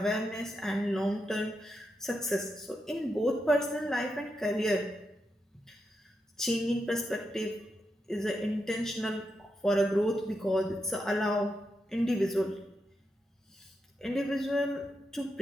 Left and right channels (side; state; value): both; normal; correlation 0.85